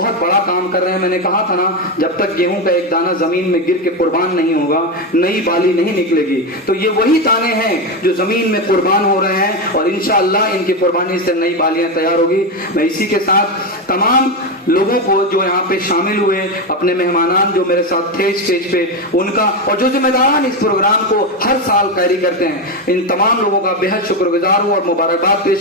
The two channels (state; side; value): normal; both; correlation 0.12